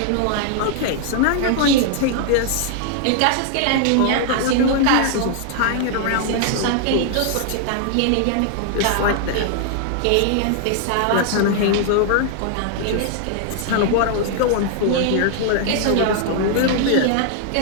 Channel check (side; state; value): both; different; correlation 0.00